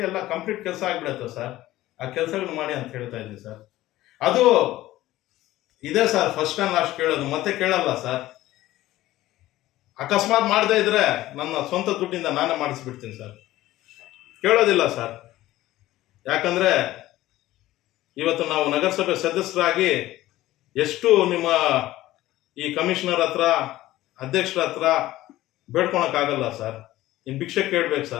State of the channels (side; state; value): right; quieter; 15.9 dB